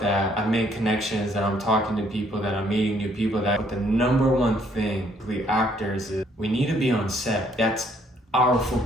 I make connections, that I'm talking to people, that I'm meeting new people. But the number one thing with actors is we need to be on set. That's our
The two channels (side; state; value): both; normal; correlation 0.66